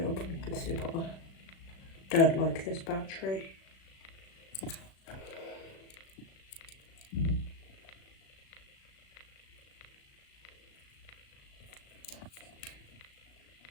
I'll probably consider proper. Don't like this battery.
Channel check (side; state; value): right; late; 36 ms